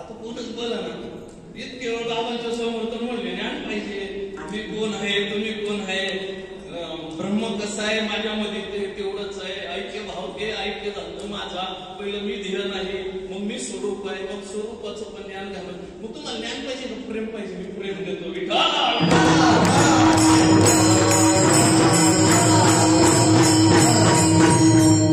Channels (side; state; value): both; identical; correlation 1.00